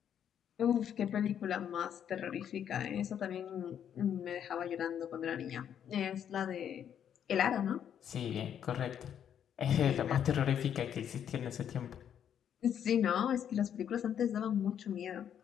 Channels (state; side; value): quieter; right; 9.1 dB